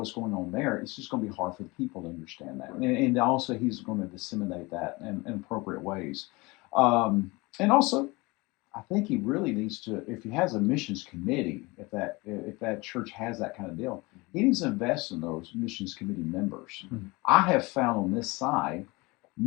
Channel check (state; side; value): quieter; right; 24.2 dB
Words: going on there, it's just going to be hard for the people to understand that. And also, he's going to disseminate that in appropriate ways. And also, I think he really needs to, if he has a missions committee, if that church has that kind of deal, he needs to invest in those missions committee members. Mm-hmm. I have found on this side,